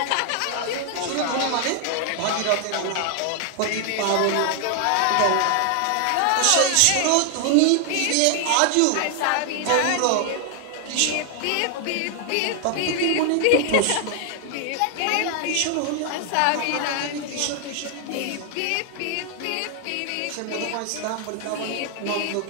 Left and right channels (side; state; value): both; different; correlation 0.00